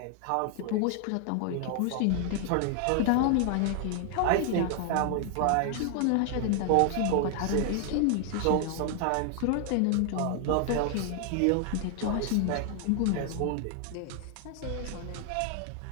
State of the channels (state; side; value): different; both; correlation 0.00